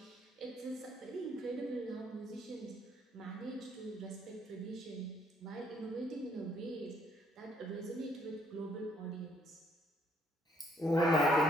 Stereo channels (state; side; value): normal; both; correlation 0.67